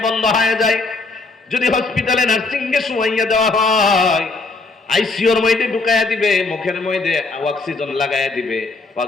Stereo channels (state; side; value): quieter; right; 3.6 dB